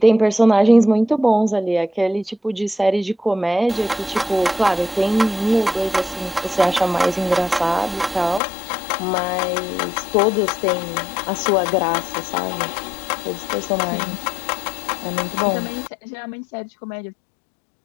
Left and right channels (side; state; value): right; drops out; at 8.4 s